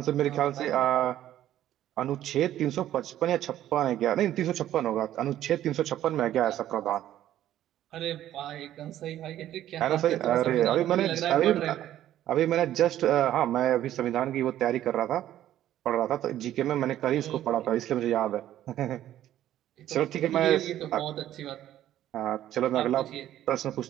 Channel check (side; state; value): left; quieter; 12.4 dB